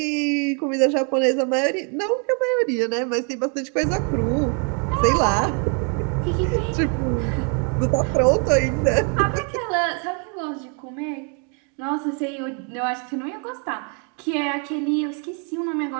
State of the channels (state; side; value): quieter; left; 39.2 dB